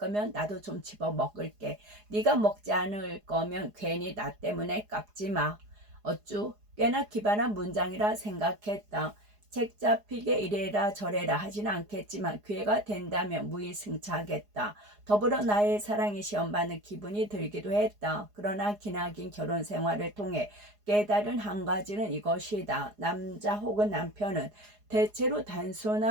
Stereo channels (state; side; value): late; left; 4.8 ms